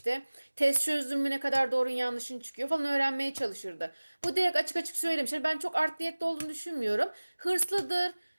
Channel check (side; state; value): both; inverted; correlation -1.00